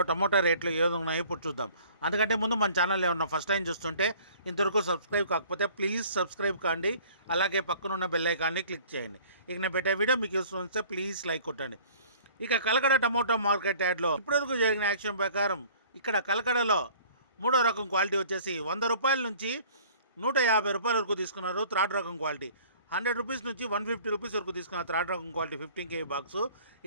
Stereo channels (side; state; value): both; inverted; correlation -0.50